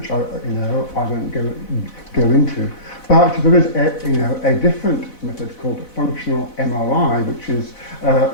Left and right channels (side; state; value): right; late; 4.1 ms